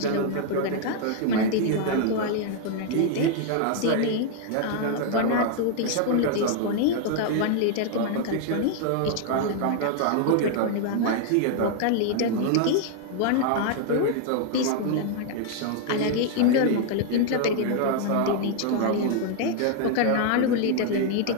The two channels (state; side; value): different; both; correlation 0.00